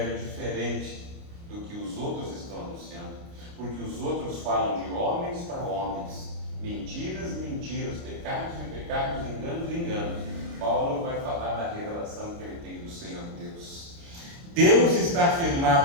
diferente do que os outros estão anunciando, porque os outros falam de homens para homens, mentiras, mentiras, pecados e pecados, enganos e enganos. Paulo vai falar da revelação que ele tem do Senhor Deus. Deus está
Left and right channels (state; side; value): late; left; 29 ms